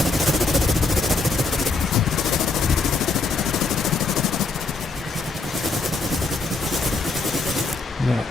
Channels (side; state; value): right; quieter; 3.7 dB